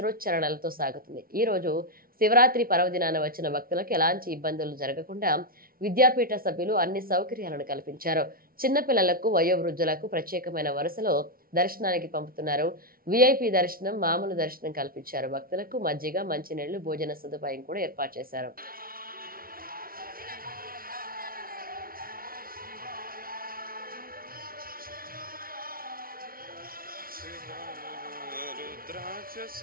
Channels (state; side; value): late; left; 0.43 ms